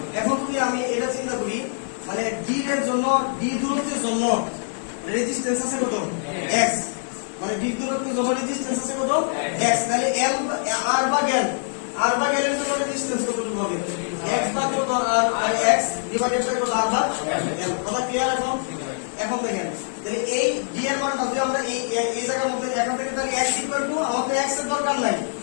এখন যদি আমি এটা চিন্তা করি, মানে d এর জন্য d দূরত্বের জন্য রেজিস্ট্যান্স আছে কত x, মানে d দূরত্বের জন্য রেজিস্ট্যান্স আছে কত x, তাহলে l r ভাগ l এর জন্য রেজিস্ট্যান্স কতটুকু হবে x ভাগ কত r আর x ডিভাইডেড বাই কত r ভাগ l। কথা ক্লিয়ার এখন। এখন দেখেন তাহলে এই d এর মানটা যদি আমরা এই জায়গার মধ্যে এখান থেকে, তাহলে x ইকুয়াল টু আমাদের x এর দরকার নাই,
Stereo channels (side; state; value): right; silent; digital silence